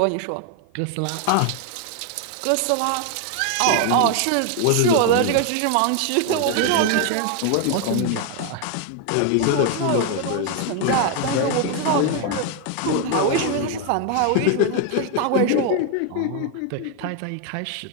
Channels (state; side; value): different; both; correlation 0.01